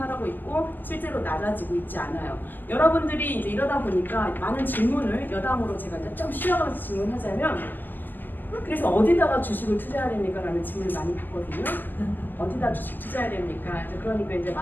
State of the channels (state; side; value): late; right; 0.088 ms